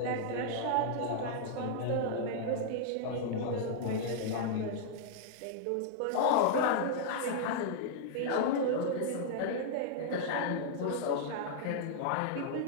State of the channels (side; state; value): both; different; correlation -0.01